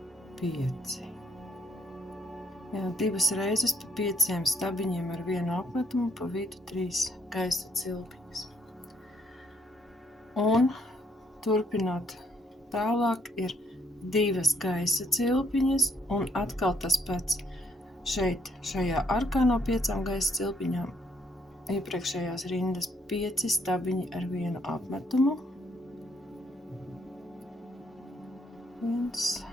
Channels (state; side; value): normal; both; correlation 0.70